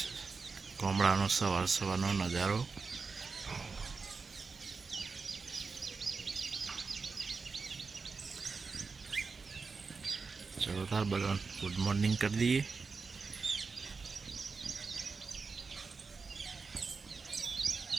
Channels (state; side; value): quieter; left; 4.7 dB